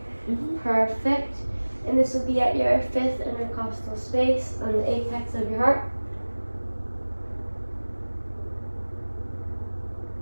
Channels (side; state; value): both; inverted; correlation -1.00